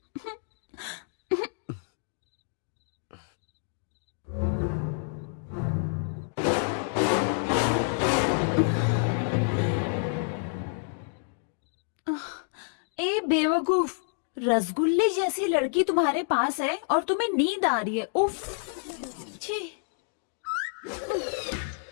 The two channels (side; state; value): right; silent; digital silence